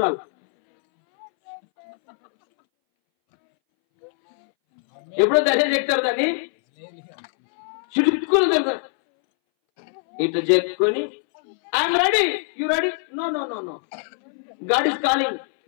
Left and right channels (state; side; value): silent; right; 62 dB below the other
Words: ఎప్పుడో దర్శనం చెప్తారు, దాన్ని చుట్టుకుని తెలుస్తారు. ఇట్లా చెప్పుకొని I'm ready, you ready? No no no no, God is calling.